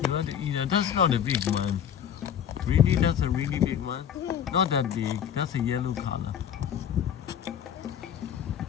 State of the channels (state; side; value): quieter; right; 9.0 dB